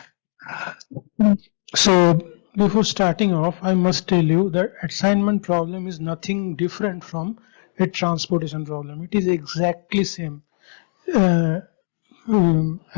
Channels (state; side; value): silent; right; 65 dB below the other